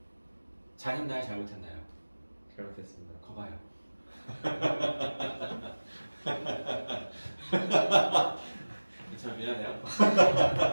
잘했나요? 잘못했나요? 잘못했습니다. 거봐요. 참 미안해요.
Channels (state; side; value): inverted; both; correlation -1.00